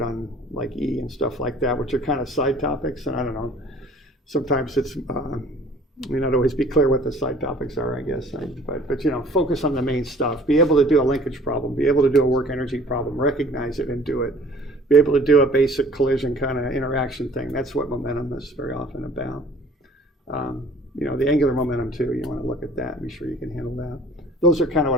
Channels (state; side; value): normal; both; correlation 0.51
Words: on like E and stuff like that, which are kind of side topics. And I don't know, sometimes it's, may not always be clear what the side topics are, I guess. But focus on the main stuff. Be able to do a linkage problem, be able to do a work energy problem, recognize it and do it. Be able to do a basic collision kind of interaction thing. That's what momentum is very often about. The angular momentum too, you want to look at that and be sure you can handle that. Those are kind of